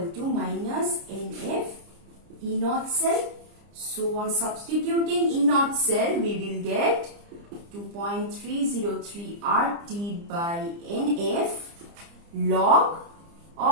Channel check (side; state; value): left; late; 30 ms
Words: to minus NF E0 cell. So on substituting E0 cell, we will get 2.303 RT by NF log